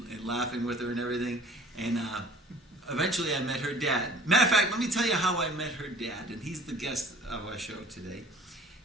laughing with her and everything. And eventually I met her dad. Matter of fact, let me tell you how I met her dad. And he's the guest of our show today.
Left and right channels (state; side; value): normal; both; correlation 0.49